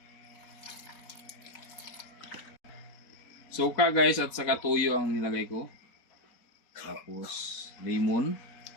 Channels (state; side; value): late; right; 4.2 ms